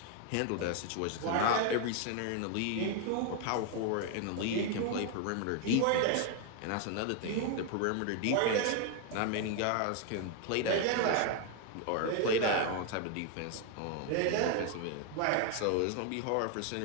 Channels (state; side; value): different; both; correlation 0.00